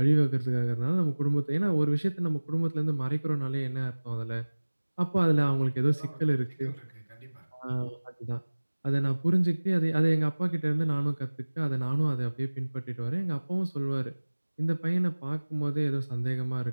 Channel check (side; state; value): both; inverted; correlation -1.00